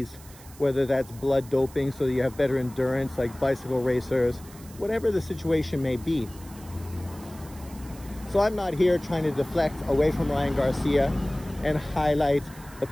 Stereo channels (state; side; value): noise; right; hiss, 21 dB below the sound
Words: whether that's blood doping so that you have better endurance like bicycle racers, whatever the situation may be. So I'm not here trying to deflect away from Ryan Garcia and highlight the